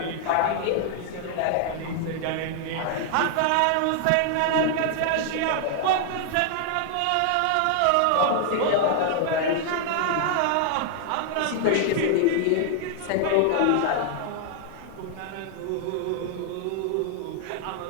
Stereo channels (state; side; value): different; both; correlation 0.00